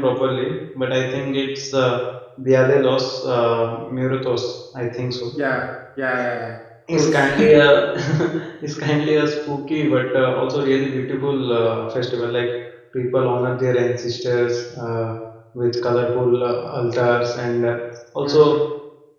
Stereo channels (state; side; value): identical; both; correlation 1.00